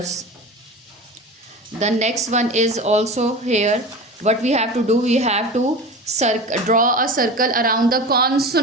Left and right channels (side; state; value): both; normal; correlation 0.31